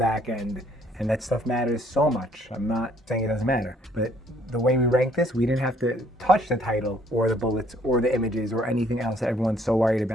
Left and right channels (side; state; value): both; normal; correlation 0.64